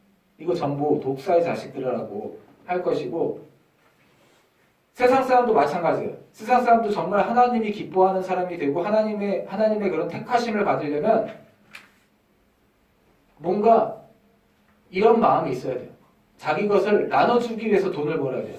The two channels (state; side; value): identical; both; correlation 1.00